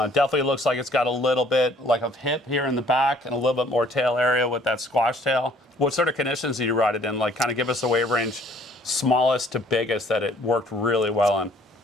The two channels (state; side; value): normal; both; correlation 0.59